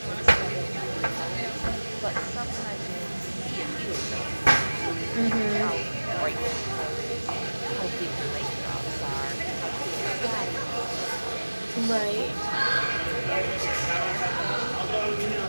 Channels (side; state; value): both; inverted; correlation -1.00